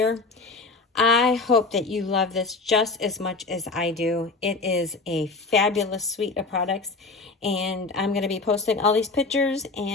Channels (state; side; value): quieter; right; 3.7 dB